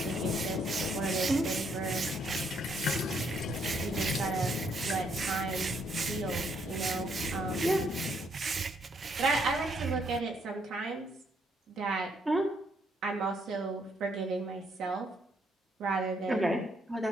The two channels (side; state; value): both; normal; correlation 0.71